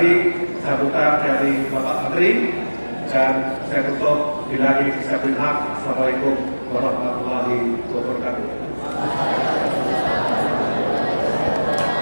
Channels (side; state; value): both; inverted; correlation -1.00